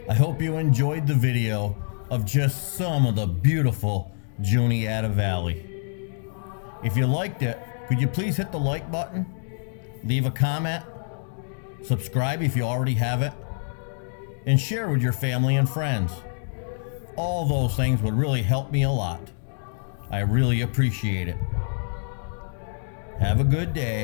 I hope you enjoyed the video of just some of the beautiful Juniata Valley. If you liked it, could you please hit the like button, leave a comment, subscribe if you already have it, and share with your family and friends. All those things would really help me a lot. I really appreciate it. Have a good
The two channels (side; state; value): right; silent; digital silence